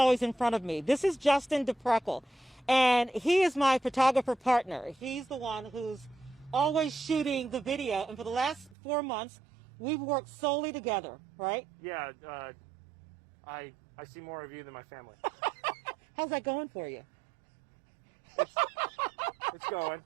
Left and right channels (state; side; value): drops out; left; at 8.8 s